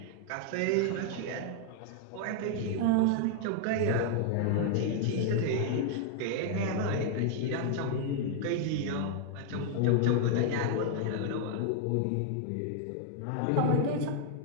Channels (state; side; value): different; both; correlation 0.00